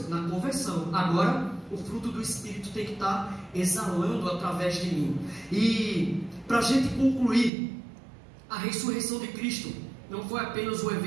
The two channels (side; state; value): left; drops out; at 7.5 s